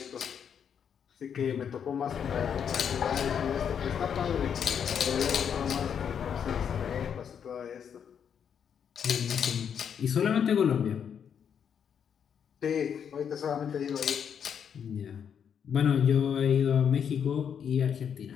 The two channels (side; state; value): right; quieter; 7.8 dB